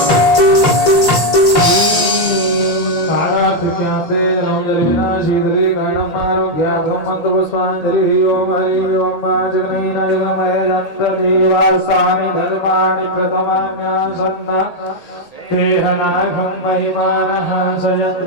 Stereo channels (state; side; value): late; right; 1.8 ms